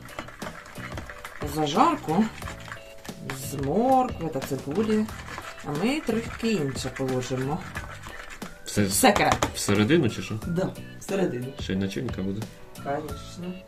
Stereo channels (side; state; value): both; identical; correlation 1.00